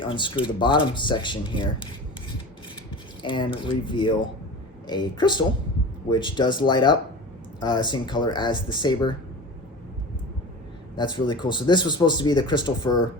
unscrew the bottom section here and reveal a crystal, which does light up, same color as the saber. That's really cool. So this was supposed to be the crystal for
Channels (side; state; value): both; normal; correlation 0.34